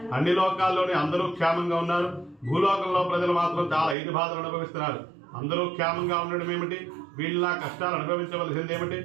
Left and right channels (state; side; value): drops out; left; at 4.0 s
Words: అన్ని లోకాల్లోని అందరూ క్షేమంగా ఉన్నారు. భూలోకంలో ప్రజలు మాత్రం చాలా 5 బాధలు అనుభవిస్తున్నారు. అందరూ క్షేమంగా ఉండడం ఏమిటి, వీళ్ళ కష్టాలు అనుభవించవలసిందేమిటి,